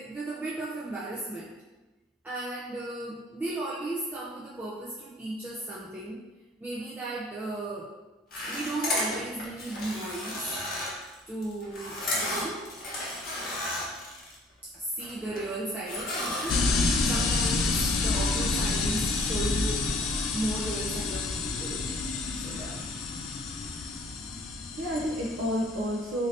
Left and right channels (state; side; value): normal; both; correlation 0.56